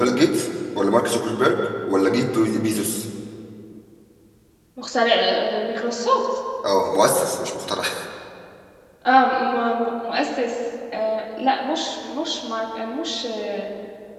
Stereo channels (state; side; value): identical; both; correlation 1.00